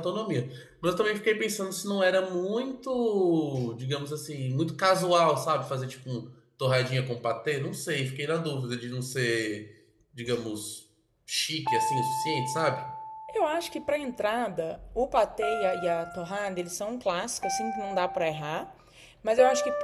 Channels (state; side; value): identical; both; correlation 1.00